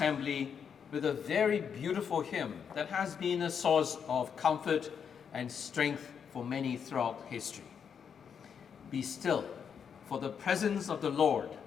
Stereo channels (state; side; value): quieter; right; 7.2 dB